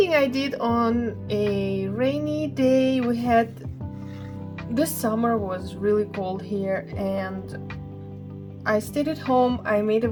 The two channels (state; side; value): identical; both; correlation 1.00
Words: I did on a rainy day. This summer was really cold here, and I stayed at home. I made a